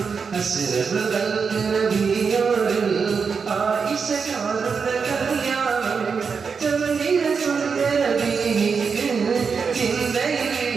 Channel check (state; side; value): quieter; left; 5.6 dB